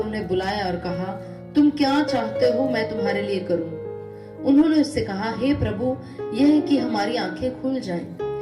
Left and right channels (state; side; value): identical; both; correlation 1.00